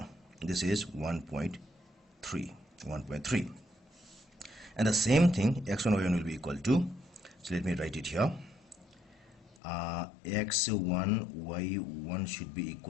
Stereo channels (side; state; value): right; drops out; at 9.6 s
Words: this is 1.3, and the same thing x1 y1 will be equal to, so let me write it here, x1 y1 should be